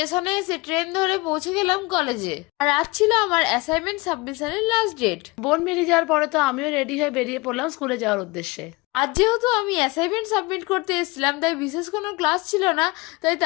এসে ট্রেন ধরে পৌঁছে গেলাম কলেজে। আর আজ ছিল আমার অ্যাসাইনমেন্ট সাবমিশনের লাস্ট ডেট। বোন বেরিয়ে যাওয়ার পরে তো আমিও রেডি হয়ে বেরিয়ে পড়লাম স্কুলে যাওয়ার উদ্দেশ্যে। আজ যেহেতু আমি অ্যাসাইনমেন্ট সাবমিট করতে এসেছিলাম, তাই বিশেষ কোনো ক্লাস ছিল না, তাই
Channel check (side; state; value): right; quieter; 24.0 dB